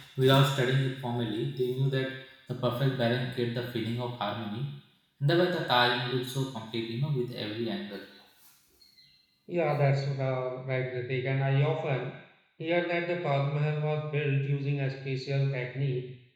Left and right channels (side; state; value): both; identical; correlation 1.00